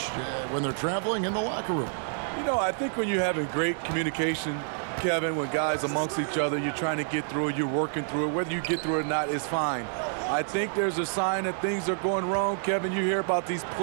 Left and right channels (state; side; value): silent; left; digital silence